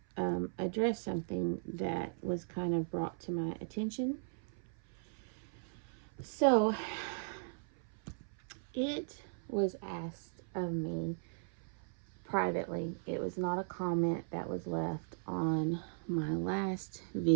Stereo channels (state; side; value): silent; left; 53 dB below the other